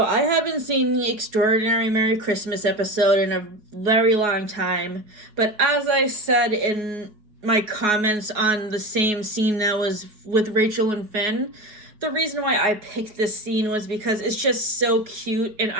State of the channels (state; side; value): late; left; 4.7 ms